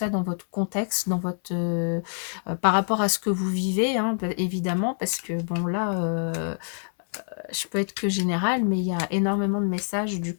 dans votre contexte, dans votre, par rapport à ce que vous vivez, hein, évidemment, parce que bon, là, je peux être que générale, mais il y a énormément de messages du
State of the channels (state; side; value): silent; right; 61 dB below the other